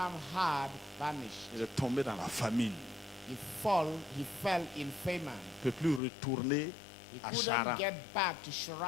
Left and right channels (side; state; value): right; drops out; at 6.0 s